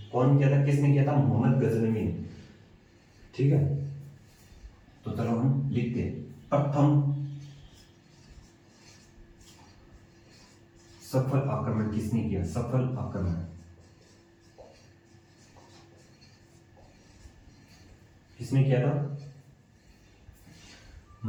कौन किया था, किसने किया था, मोहम्मद गजनवी, ठीक है। तो चलो हम लिखते हैं, प्रथम सफल आक्रमण किसने किया, सफल आक्रमण किसने किया था,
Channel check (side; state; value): both; identical; correlation 1.00